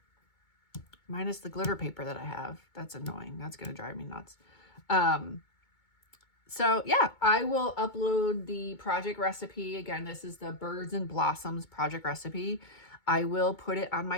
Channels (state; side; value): late; right; 2.2 ms